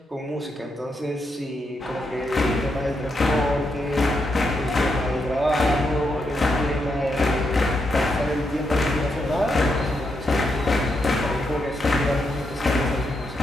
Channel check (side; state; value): both; normal; correlation 0.82